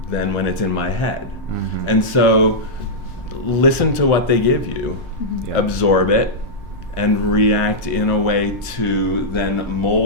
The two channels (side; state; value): both; normal; correlation -0.09